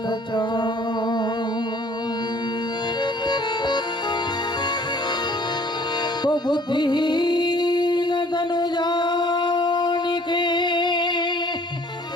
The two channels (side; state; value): both; normal; correlation 0.55